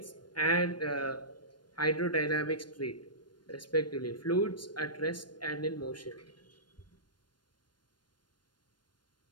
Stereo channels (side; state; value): right; late; 0.71 ms